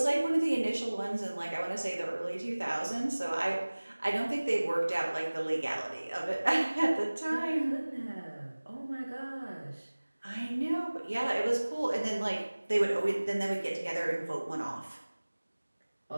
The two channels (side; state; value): both; inverted; correlation -1.00